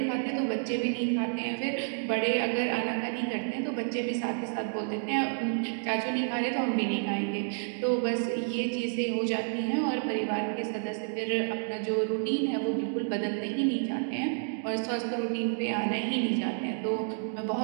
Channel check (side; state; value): left; silent; digital silence